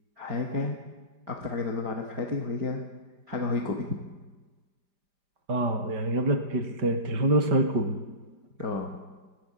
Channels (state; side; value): late; left; 5.0 ms